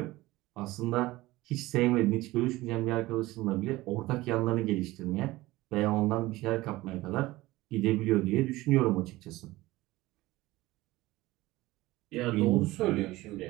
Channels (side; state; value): left; quieter; 18.7 dB